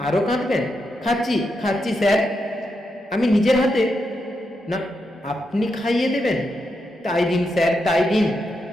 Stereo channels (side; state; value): both; normal; correlation 0.84